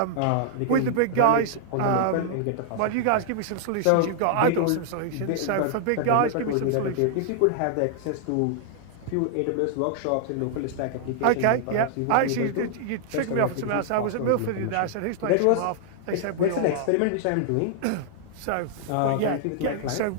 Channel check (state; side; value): different; both; correlation -0.01